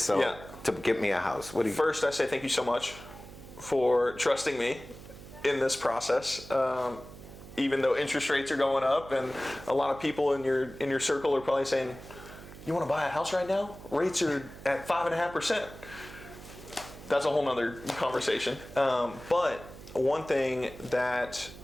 to get me a house. What do you? First, I say thank you so much for trusting me in this process. Even though interest rates are going up, and a lot of people in your circle are probably saying, "You want to buy a house right now? Rates are at 5.5%." That's a whole nother conversation. But one thing that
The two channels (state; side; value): noise; right; hum, 16 dB below the sound